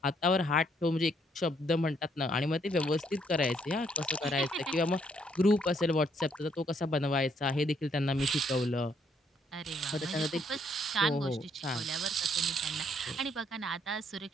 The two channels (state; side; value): normal; both; correlation 0.70